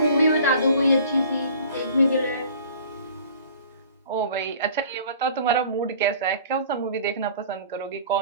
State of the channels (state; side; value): inverted; both; correlation -0.47